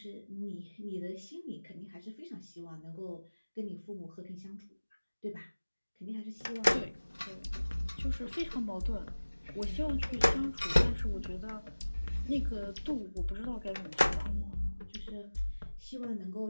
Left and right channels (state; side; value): inverted; both; correlation -1.00